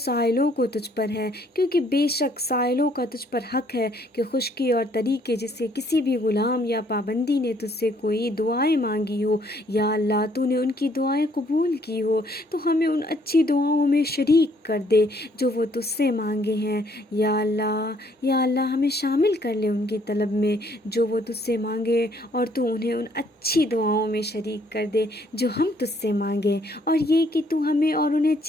کو تجھ پر ہے، کیونکہ بے شک سائلوں کا تجھ پر حق ہے کہ خشکی اور طریقے جس سے کسی بھی غلام یا پابندی نے تجھ سے کوئی دعائیں مانگی ہو، یا اللہ تو نے ان کی دعائیں قبول کی ہو تو ہمیں ان اچھی دعاؤں میں شریک کر دے جو وہ تجھ سے مانگے ہیں، یا اللہ ہمیں شامل کر لے ان کی طلب میں جو وہ تجھ سے مانگے، اور تو انہیں ان اچھی دعاؤں میں شریک کر دے جو ہم تجھ سے مانگیں، اور یہ کہ تو ہمیں اور انہیں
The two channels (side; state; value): both; normal; correlation 0.65